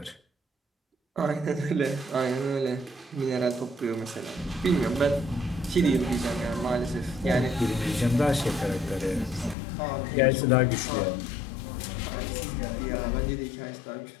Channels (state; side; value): drops out; right; at 9.6 s